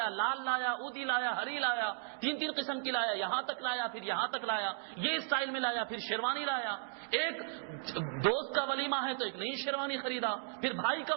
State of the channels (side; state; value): left; silent; digital silence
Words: لال لایا، اودی لایا، ہری لایا، 3 قسم کی لایا، یہاں تک لایا، پھر یہاں تک لایا، یہ اسٹائل میں لایا، پھر شیروانی لایا. ایک دوست کا ولیمہ ہے تو ایک نئی شیروانی خریدا، پھر بھائی کا